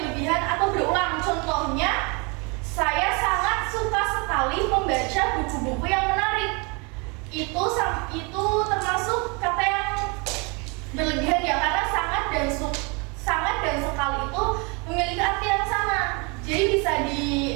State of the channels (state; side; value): quieter; left; 30.9 dB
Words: atau berulang. Contohnya, saya sangat suka sekali membaca buku-buku yang menarik. Itu termasuk kata yang berlebihan ya, karena sangat dan sekali itu memiliki arti yang sama. Jadi bisa